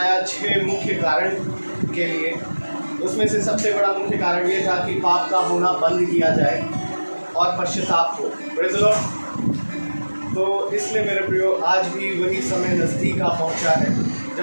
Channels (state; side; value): inverted; both; correlation -1.00